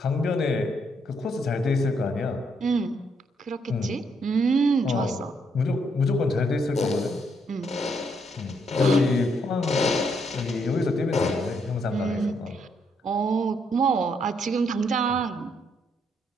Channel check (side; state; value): both; normal; correlation 0.74